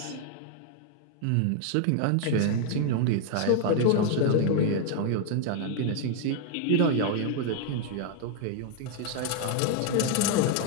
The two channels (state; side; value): different; both; correlation 0.00